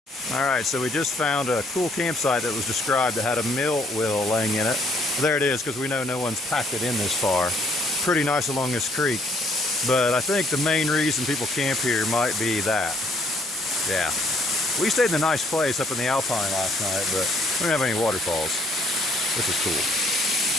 Alright, so we just found a cool campsite that was described that had a mill wheel laying in it. There it is, because we know no one's packed it in this far. Pretty nice along this creek. But I think the main reason people camp here might be that. Yeah. We stayed in a nice place up in the Alpine last night, but we don't have any waterfalls. This is cool.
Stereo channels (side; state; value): both; normal; correlation 0.61